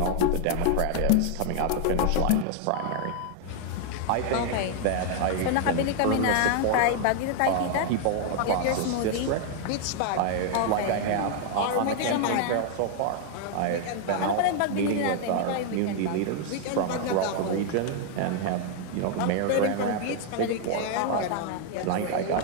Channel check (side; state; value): both; different; correlation 0.00